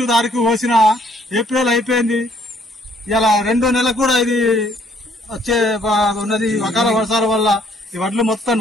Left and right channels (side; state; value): both; normal; correlation 0.65